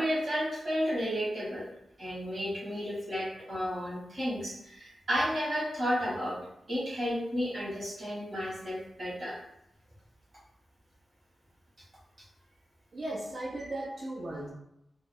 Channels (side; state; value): both; normal; correlation 0.90